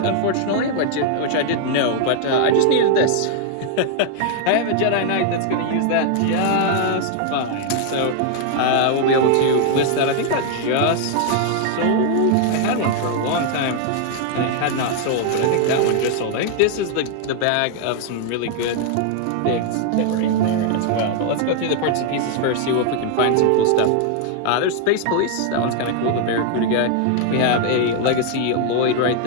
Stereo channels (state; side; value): different; both; correlation 0.00